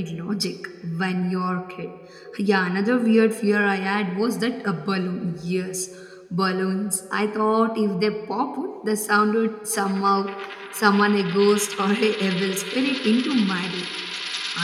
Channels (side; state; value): both; identical; correlation 1.00